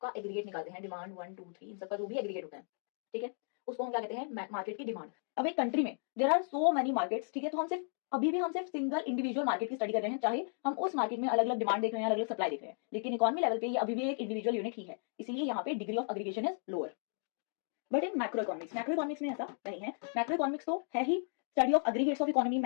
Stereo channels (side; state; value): right; silent; 55 dB below the other